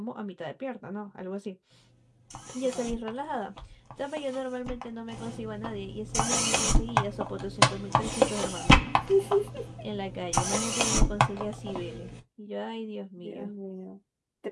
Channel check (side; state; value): both; identical; correlation 1.00